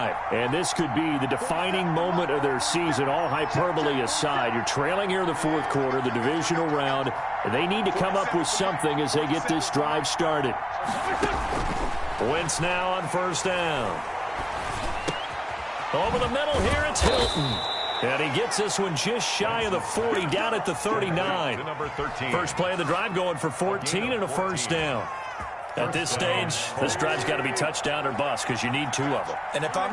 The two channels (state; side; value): identical; both; correlation 1.00